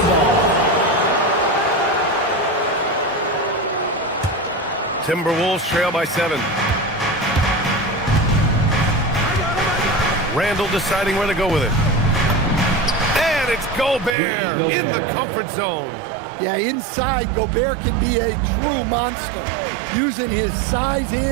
ball. Timberwolves trail by 7. Randall deciding where to go with it. And it's Gobert in the comfort zone. Yeah, inside, Gobert can be a true monster, using his size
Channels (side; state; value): left; drops out; at 14.2 s